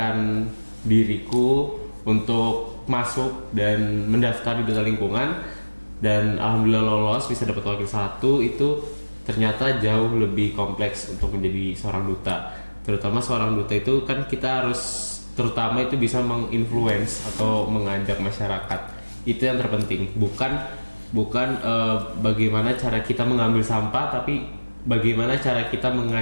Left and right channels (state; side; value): inverted; both; correlation -1.00